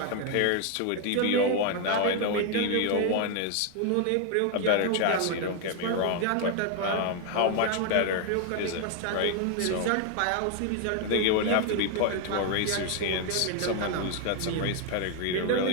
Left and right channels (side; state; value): both; different; correlation 0.00